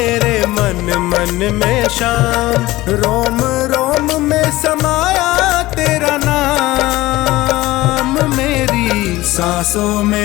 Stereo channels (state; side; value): quieter; right; 18.2 dB